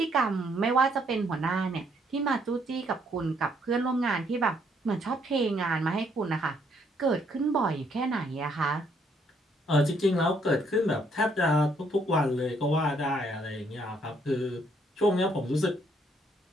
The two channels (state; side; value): normal; both; correlation 0.69